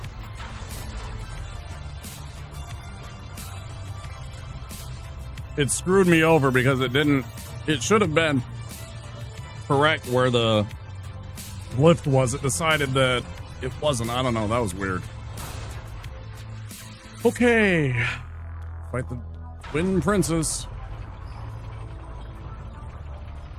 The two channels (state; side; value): identical; both; correlation 1.00